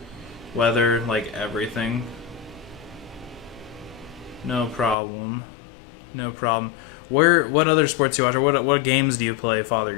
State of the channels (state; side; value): drops out; right; at 5.0 s